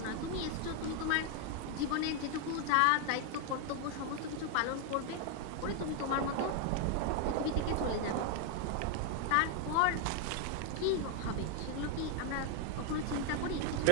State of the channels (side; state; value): both; different; correlation 0.00